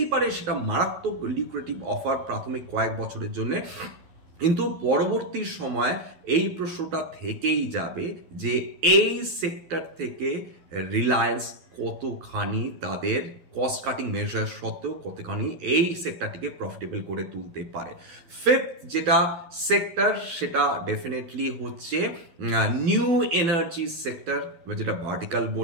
পারে সেটা মারাত্মক লিকুরেটিভ অফার প্রাথমিক কয়েক বছরের জন্য, কিন্তু পরবর্তী সময় এই প্রশ্নটা থেকেই যাবে যে এই সেক্টর থেকে রিলায়েন্স কতখানি তাদের কস্ট কাটিং মেজার সত্ত্বেও কতখানি এই সেক্টরটিকে প্রফিটেবল করে তুলতে পারে। ফিফথ যেটা সেক্টর সেটা ডেফিনেটলি হচ্ছে নিউ এনার্জি সেক্টর, যেটা ভার্টিক্যাল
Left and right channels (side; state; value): left; late; 12 ms